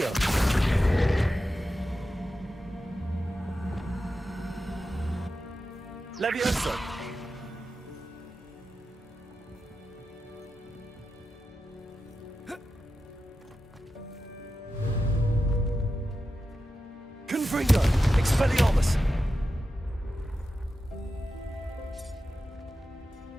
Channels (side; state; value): both; normal; correlation 0.91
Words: Levioso! Confringo. Expelliarmus.